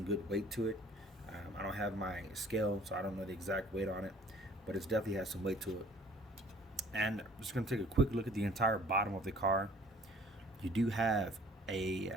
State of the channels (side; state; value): both; normal; correlation 0.54